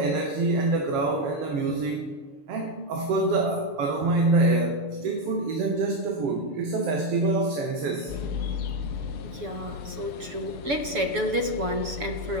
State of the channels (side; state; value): left; late; 7.0 ms